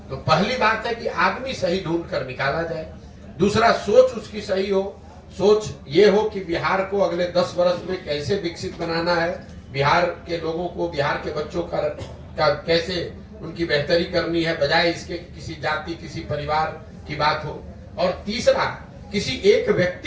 तो पहली बात है कि आदमी सही ढूंढ कर निकाला जाए। दूसरा, सोच उसकी सही हो। सोच ये हो कि बिहार को अगले 10 वर्ष में कैसे विकसित बनाना है, बिहार के लोगों को, बिहार के बच्चों का कैसे उनकी बेहतरी करनी है, बजाय इसके किसी जाति, किसी परिवार की बात हो। और तीसरा, किसी एक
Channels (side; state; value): both; identical; correlation 1.00